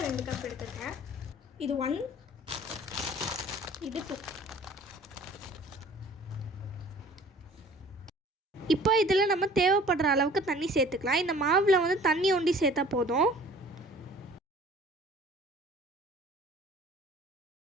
2 கப் எடுத்துருக்கேன். இது 1, இது 2. இப்போ இதில் நம்ம தேவைப்படுற அளவுக்கு தண்ணி சேர்த்துக்கலாம். இந்த மாவில் வந்து தண்ணி ஒண்டி சேர்த்தா போதும்.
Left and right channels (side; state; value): both; normal; correlation 0.49